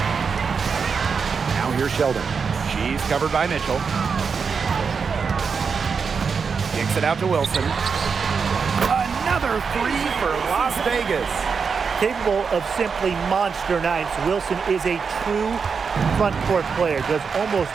Now here's Sheldon. She's covered by Mitchell. Kicks it out to Wilson. Another 3 for Las Vegas. Capable of simply monster nights, Wilson is a true front court player. Does almost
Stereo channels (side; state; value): left; quieter; 5.7 dB